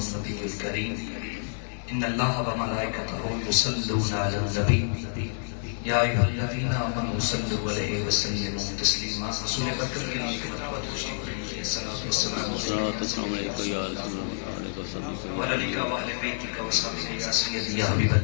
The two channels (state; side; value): silent; right; digital silence